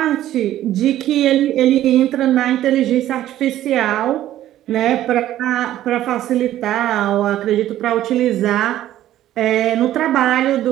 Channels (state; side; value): quieter; left; 13.1 dB